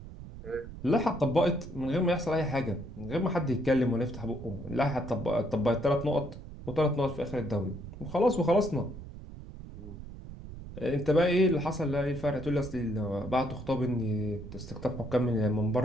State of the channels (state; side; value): noise; right; rumble, 13 dB below the sound